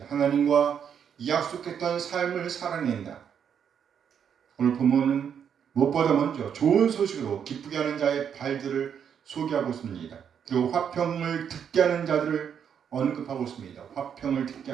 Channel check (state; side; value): quieter; left; 8.0 dB